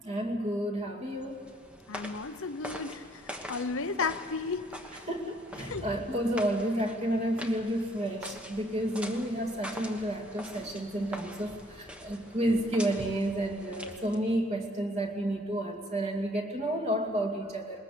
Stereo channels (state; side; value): normal; both; correlation 0.63